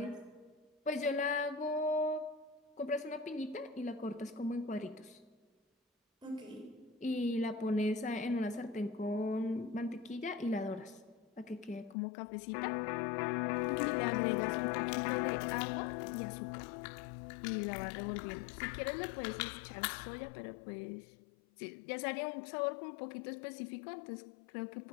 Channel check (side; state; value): right; drops out; at 12.0 s